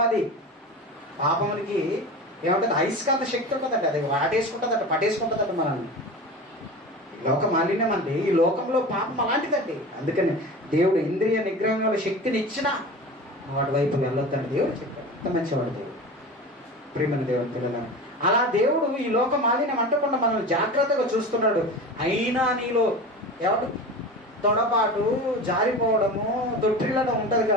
అది పాపమునికి ఏమంటుంది? అయస్కాంత శక్తి ఉంటుందండి. అది వాటేసుకుంటుందట, పట్టేసుకుంటుందట మనల్ని. లోక మాలిన్యం అండి. ఈ లోకంలో పాపం అలాంటిదండి. అందుకని దేవుడు ఇంద్రియ నిగ్రహంలో శక్తిని ఇచ్చినా నువ్వు అటువైపు వెళ్ళొద్దని దేవుడు చెప్పాడు. ఎంత మంచివాడు దేవుడు. ప్రియమైన దేవుని పిల్లలను, అలా దేవుడు ఈ లోక మాలిన్యం అంటకుండా మనల్ని జాగ్రత్తగా చూస్తున్నాడు. అయినా నీలో ఎవరు తొడపాటు, జారిపోవడము, తొట్టిల్లడం ఉంటుంది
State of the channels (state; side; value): normal; both; correlation 0.32